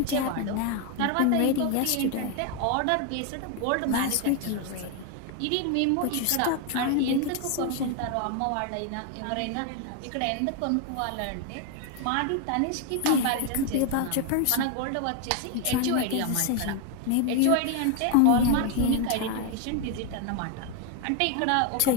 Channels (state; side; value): different; both; correlation 0.01